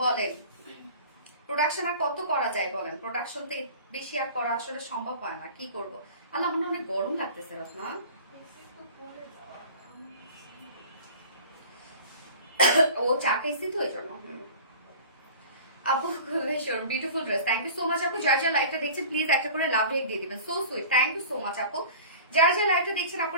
বলেন, প্রোডাকশন আর কত করা যায় বলেন, প্রোডাকশন তো বেশি আর করা আসলে সম্ভব হয় না, কি করব। আল্লাহ আমার অনেক গরম লাগতেছে রত্না। ও চা খেয়েছি তো এই জন্য। আপু beautiful dress, thank you so much আপু। যার যার লাইভটা দেখছেন প্লিজ একটা করে লাভ রেক দিয়ে দিবেন, so sweet, thank you so much আপু। যারা যারা লাইভটা দেখছেন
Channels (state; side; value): inverted; both; correlation -0.41